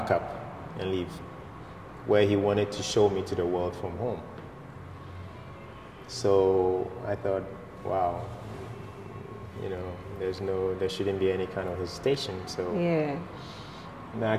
up and leave, where He wanted to show me to the world from home. So I thought, wow, you know, there shouldn't be any kind of hesitation. So now I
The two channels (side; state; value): both; identical; correlation 1.00